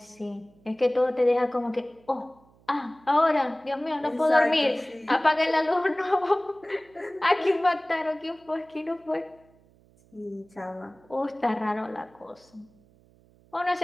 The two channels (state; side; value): noise; right; hum, 30 dB below the sound